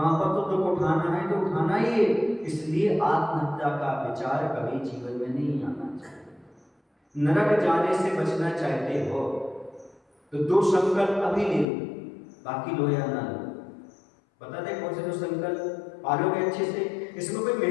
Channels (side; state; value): right; drops out; at 11.7 s